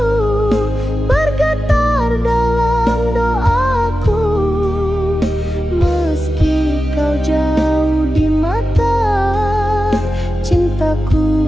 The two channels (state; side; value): normal; both; correlation 0.92